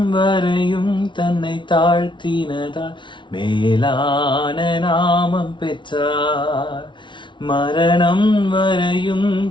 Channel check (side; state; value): right; late; 0.24 ms